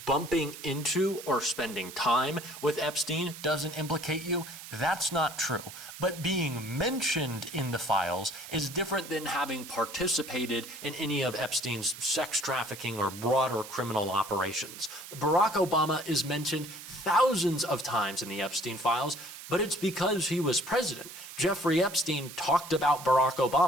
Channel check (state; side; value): noise; right; hiss, 13 dB below the sound